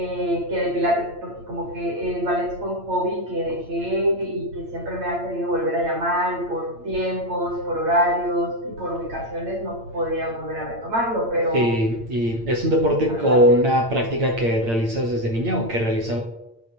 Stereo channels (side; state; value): left; late; 8.7 ms